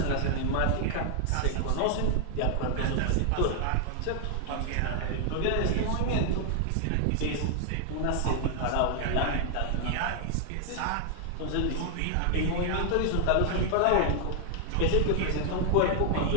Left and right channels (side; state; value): both; different; correlation 0.00